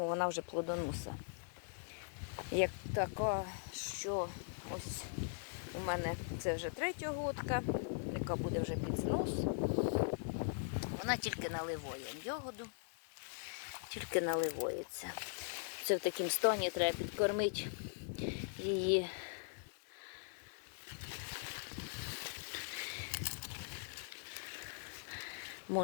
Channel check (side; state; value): right; silent; digital silence